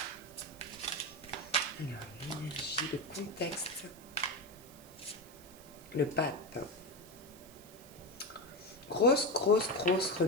Alors, l'énergie, le contexte, le pape. Grosse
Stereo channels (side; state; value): right; noise; hiss, 20 dB below the sound